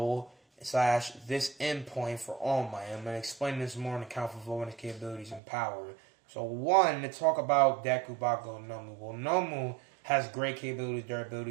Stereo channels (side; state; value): left; drops out; at 5.4 s